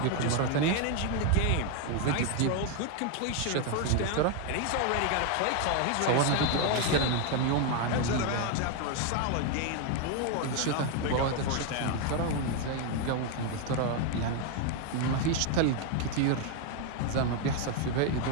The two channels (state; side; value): different; both; correlation 0.01